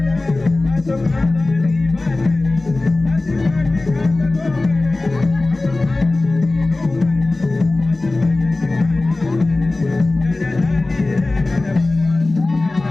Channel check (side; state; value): right; quieter; 3.1 dB